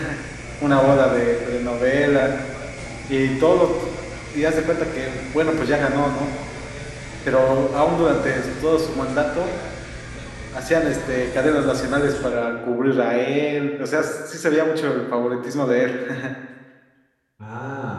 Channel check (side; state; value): both; identical; correlation 1.00